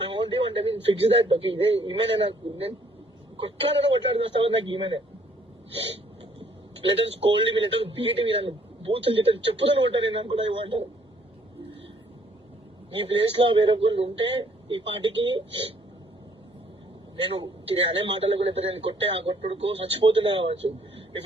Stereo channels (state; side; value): normal; both; correlation 0.63